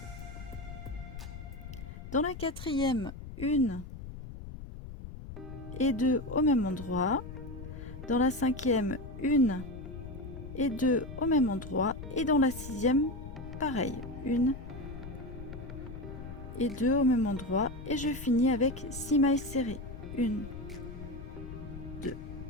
Dans la quatrième, 1 et 2 au même endroit. Dans la cinquième, 1 et 2 au même endroit. Et dans la sixième, pareil, 1 et 2 au même endroit. Et je finis avec 6 mailles serrées. 1, 2,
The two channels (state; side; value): noise; left; rumble, 11 dB below the sound